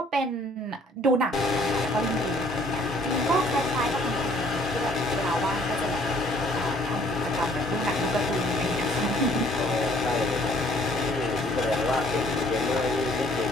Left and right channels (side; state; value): both; normal; correlation 0.59